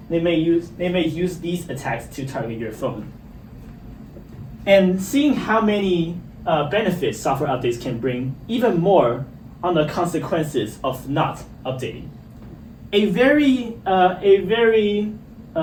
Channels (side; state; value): both; identical; correlation 1.00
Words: They may use these attacks to target your phone. And seeing how many benefits software updates can bring, even more on the consequences of not updating.